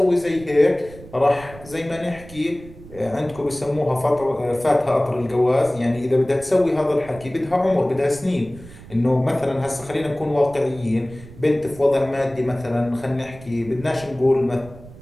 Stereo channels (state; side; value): noise; right; rumble, 18 dB below the sound